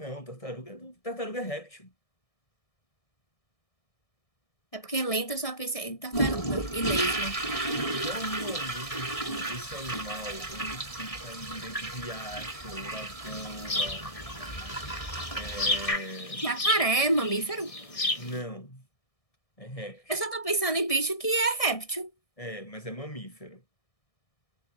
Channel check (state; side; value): late; right; 1.6 ms